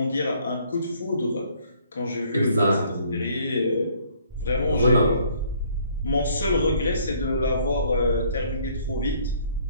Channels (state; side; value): inverted; both; correlation -0.61